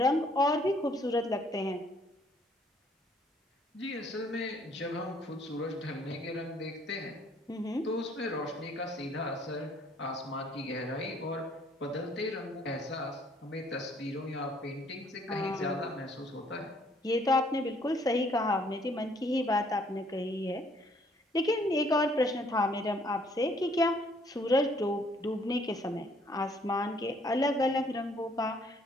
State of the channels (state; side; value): normal; both; correlation 0.63